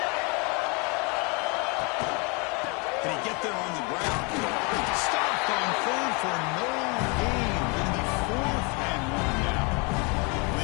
Can he get there on the ground? Stopped on third for no gain. Going to be 4th and 1 now.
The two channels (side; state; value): right; quieter; 31.4 dB